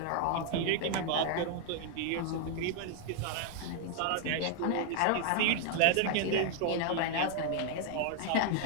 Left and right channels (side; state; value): both; different; correlation 0.00